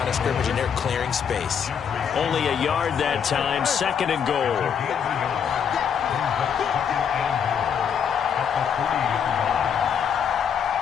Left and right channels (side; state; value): right; quieter; 7.6 dB